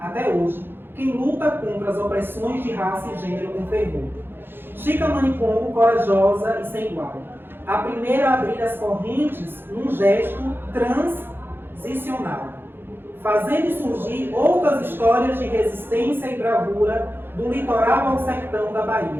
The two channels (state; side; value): late; left; 0.10 ms